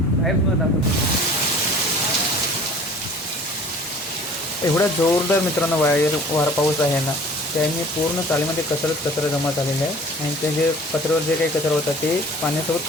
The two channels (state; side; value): normal; both; correlation 0.48